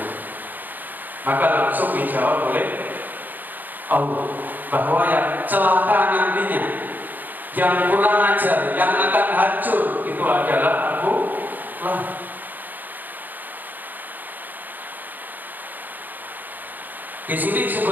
Maka langsung dijawab oleh Allah bahwa yang celaka nantinya, yang kurang ajar, yang akan hancur itu adalah Abu Lahab. Di sini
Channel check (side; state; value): left; late; 0.086 ms